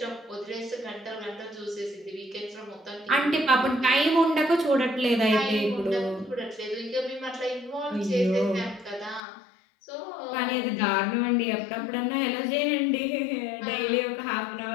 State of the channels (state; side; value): drops out; right; at 9.2 s